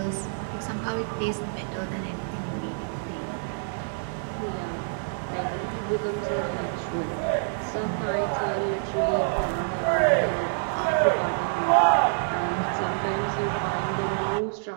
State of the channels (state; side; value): silent; left; digital silence